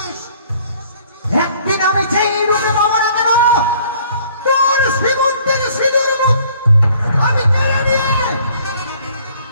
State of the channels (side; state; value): both; inverted; correlation -0.58